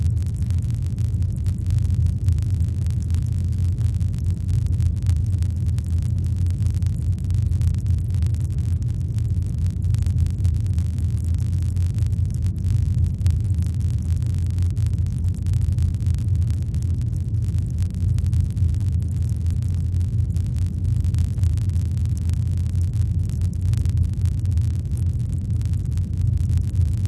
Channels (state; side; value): identical; both; correlation 1.00